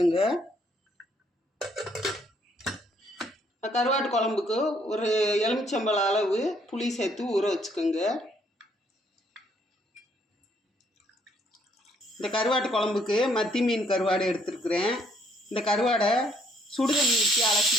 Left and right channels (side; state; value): both; normal; correlation 0.67